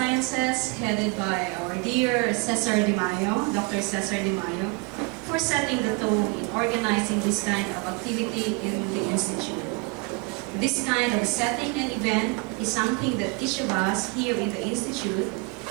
headed by our dear Cesar De Mayo, Dr. Cesar De Mayo, for setting the tone in organizing this kind of activity in the Institute. This kind of setting and event is something that each of us here in the Institute,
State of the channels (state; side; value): quieter; left; 29.2 dB